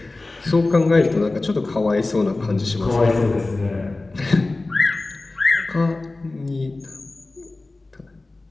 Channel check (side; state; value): right; quieter; 3.2 dB